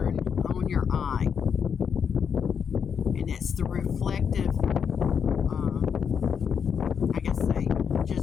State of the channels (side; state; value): right; quieter; 7.1 dB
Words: on your eye. And it's the reflective, I guess